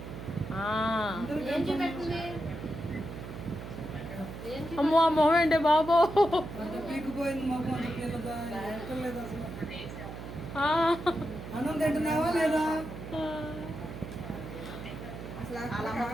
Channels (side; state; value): right; noise; hum, 10 dB below the sound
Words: అమ్మో ఆ మొహం ఏంటి బాబో. అన్నం తింటున్నావా లేదా?